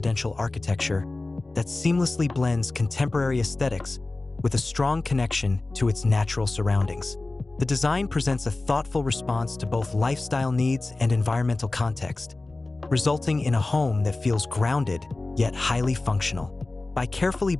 architecture that seamlessly blends contemporary aesthetics with a strong connection to its natural surroundings. The design presents a thoughtful response to both lifestyle needs and environmental context, resulting in a home that feels grounded yet highly functional. By carefully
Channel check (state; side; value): quieter; right; 3.1 dB